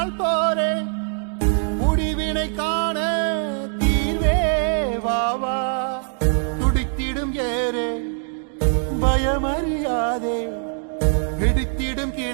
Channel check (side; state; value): left; silent; 57 dB below the other